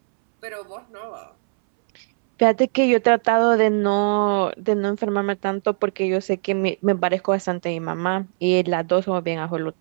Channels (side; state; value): left; silent; 65 dB below the other